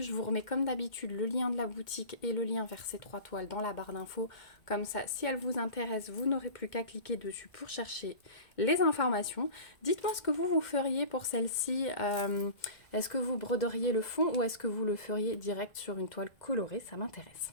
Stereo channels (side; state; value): right; late; 2.2 ms